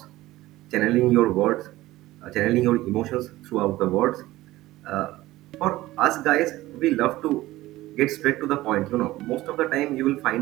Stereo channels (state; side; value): quieter; left; 17.1 dB